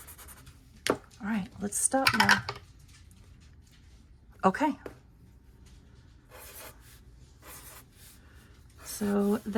all right, let's stop now. Okay. So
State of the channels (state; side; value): identical; both; correlation 1.00